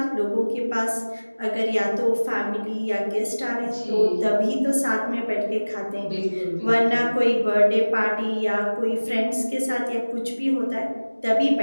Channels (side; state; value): both; inverted; correlation -1.00